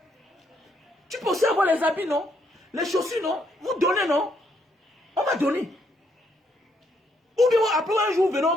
Tu peux aussi avoir les habits, non? Les chaussures, non? Vous donnez, non? On va donner. Ou bien après un jour, venons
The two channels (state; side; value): normal; both; correlation 0.73